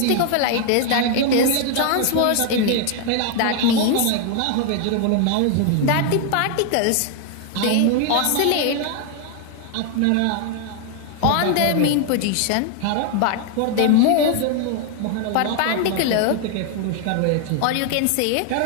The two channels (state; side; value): different; both; correlation 0.00